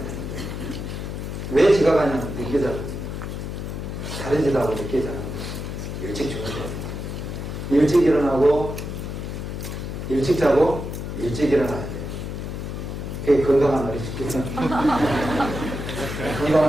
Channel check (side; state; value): left; noise; hum, 6 dB below the sound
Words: 왜 지각하냐면 늦게 자거든요. 다른 짓하고 늦게 자는 거예요. 일찍 주무셔야 돼요. 일찍 일어나고 일찍 자고 일찍 일어나야 돼요. 그게 건강한 어린이죠.